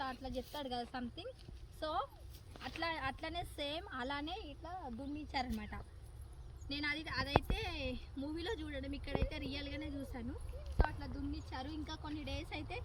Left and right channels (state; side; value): identical; both; correlation 1.00